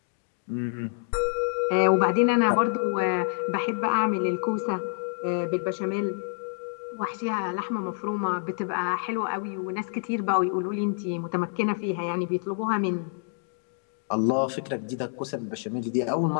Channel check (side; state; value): right; silent; digital silence